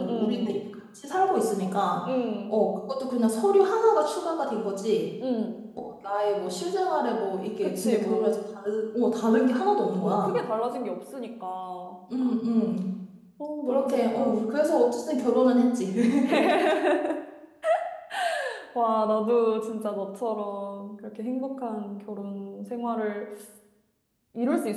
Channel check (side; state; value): both; identical; correlation 1.00